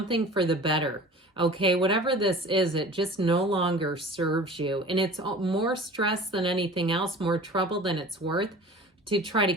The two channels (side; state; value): both; normal; correlation 0.41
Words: for the better. Okay, whatever this is, it just no longer serves you. And it's more stress than anything else, more trouble than it's worth to try to